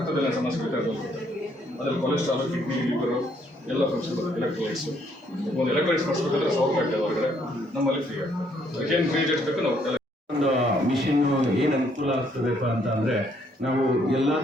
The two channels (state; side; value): normal; both; correlation 0.69